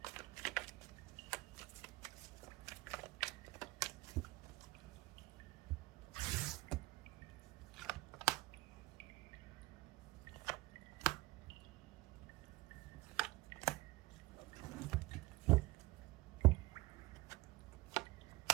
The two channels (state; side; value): quieter; left; 20.5 dB